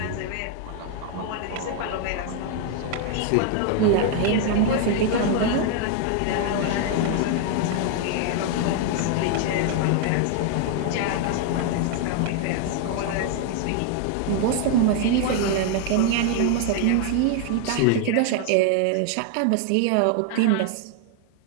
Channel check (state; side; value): different; both; correlation 0.00